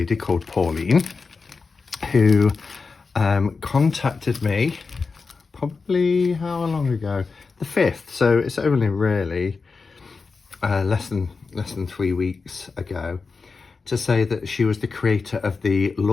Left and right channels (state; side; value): quieter; right; 4.6 dB